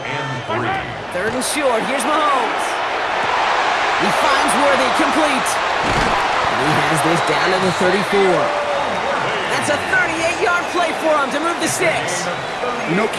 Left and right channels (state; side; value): identical; both; correlation 1.00